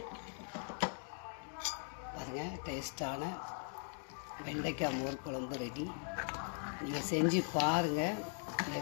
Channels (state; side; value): silent; right; 51 dB below the other